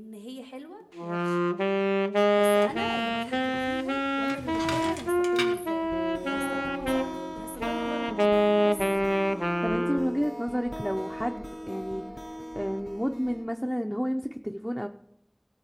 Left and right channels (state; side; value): identical; both; correlation 1.00